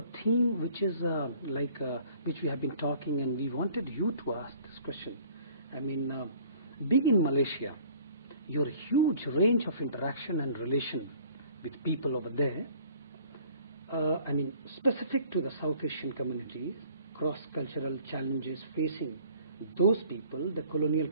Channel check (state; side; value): inverted; both; correlation -0.53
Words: theme which is which we have been talking, and we wanted you to ask this question. I mean, being in Malaysia, your huge range of interaction and relation with people over there, I mean, specific to the South Asian communities, cross-cultural challenges facing those people, the colonial